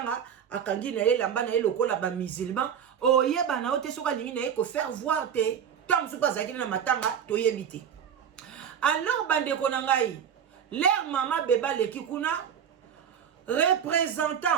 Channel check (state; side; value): quieter; left; 8.3 dB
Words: akangi na ye lamba na ye lokola ba musulman oyeba na ote soka lingi na ye ko faire voir te tant so pas ça qui na matanga toyebite. Alors bande ko na ngai leur mama beba leki kuna